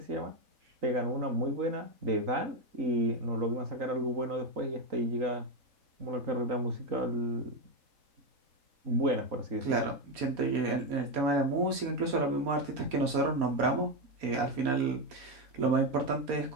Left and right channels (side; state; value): left; late; 4.2 ms